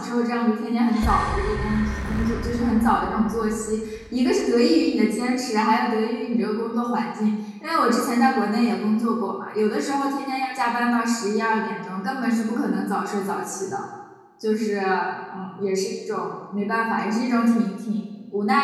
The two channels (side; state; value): both; identical; correlation 1.00